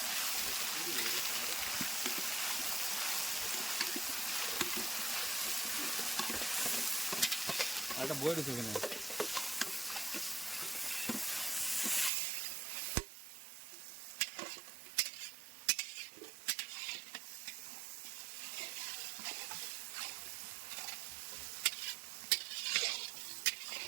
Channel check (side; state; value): left; drops out; at 12.1 s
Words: একটা বই রয়েছে এখানে।